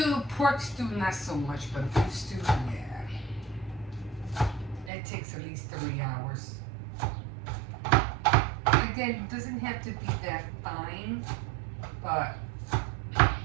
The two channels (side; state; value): left; drops out; at 4.9 s